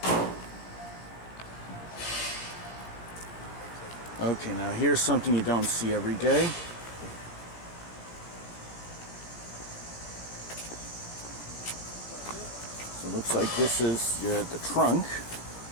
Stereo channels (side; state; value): right; late; 17 ms